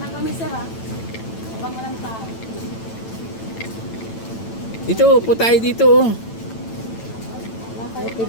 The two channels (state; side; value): late; right; 9.0 ms